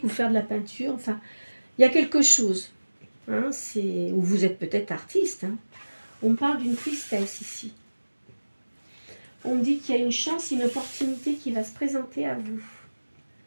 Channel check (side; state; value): both; inverted; correlation -1.00